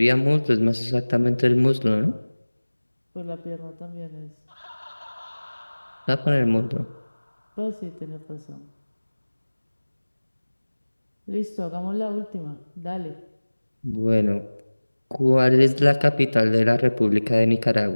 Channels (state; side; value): inverted; both; correlation -1.00